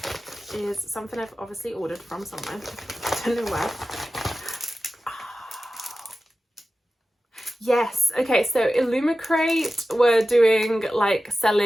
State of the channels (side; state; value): both; normal; correlation 0.94